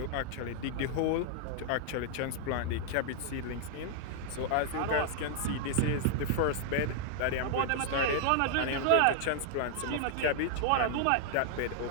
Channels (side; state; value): both; different; correlation 0.00